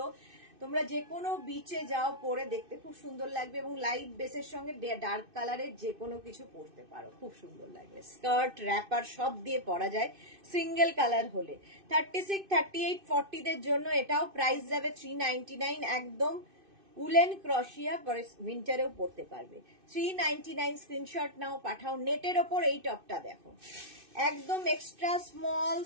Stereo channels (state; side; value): late; left; 2.6 ms